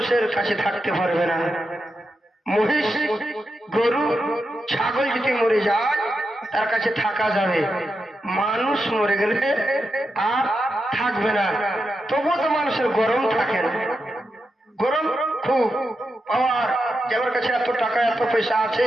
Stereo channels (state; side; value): normal; both; correlation 0.87